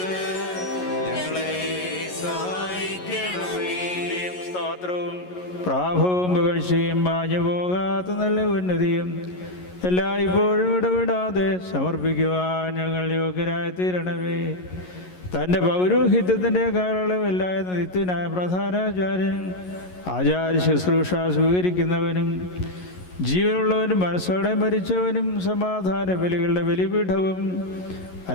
ഞങ്ങളെ സഹായിക്കണമേ. സ്തോത്രവും പ്രാഭവും പുകഴ്ചയും മാഞ്ഞു പോകാത്ത നല്ല ഉന്നതിയും എല്ലായ്പ്പോഴും ഇടപെടാതെ സമർപ്പിക്കുവാൻ ഞങ്ങൾ യോഗ്യരായി തീരണമേ. തൻ്റെ പൗരോഹിത്യത്തിൻ്റെ കാലയളവില്ലായ നിത്യനായ പ്രധാനാചാര്യൻ, ആചാര്യ ശുശ്രൂഷ സ്വീകരിക്കുന്നവനും ജീവനുള്ളവനും മനസ്സോടെ മരിച്ചവനും സമാധാന ബലികളുടെ ബലിപീഠവും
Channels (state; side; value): late; right; 11 ms